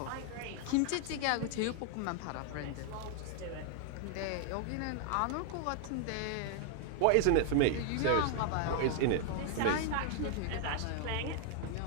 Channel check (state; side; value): different; both; correlation 0.00